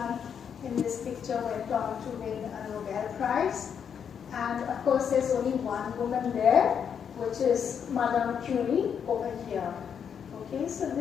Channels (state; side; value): quieter; right; 7.6 dB